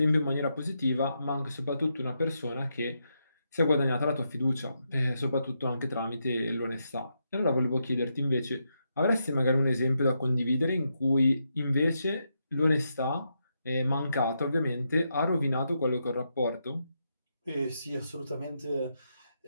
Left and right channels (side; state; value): both; inverted; correlation -0.82